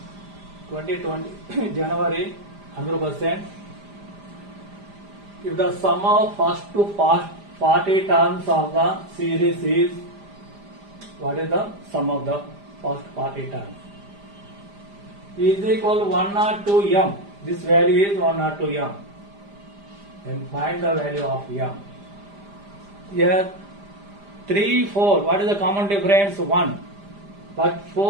January 100%. If the sum of first to 40 terms of the series is, what is the sum of the first 40 terms? Is equal 1 or 2 m. This value is 1 or 2 m. Then find the value of m. Here 3, 4. What is the common difference? 1. But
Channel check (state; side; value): late; left; 5.0 ms